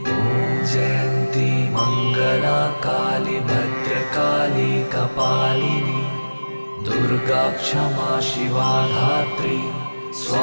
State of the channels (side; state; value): both; inverted; correlation -1.00